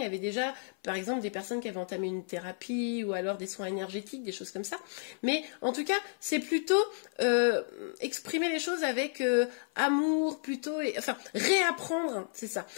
y avait déjà, par exemple, des personnes qui avaient entamé une thérapie ou alors des soins énergétiques, des choses comme ça. Mais en tout cas, c'est plutôt exprimer les choses avec amour, plutôt, enfin, réapprendre, c'est ça,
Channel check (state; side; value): silent; right; 56 dB below the other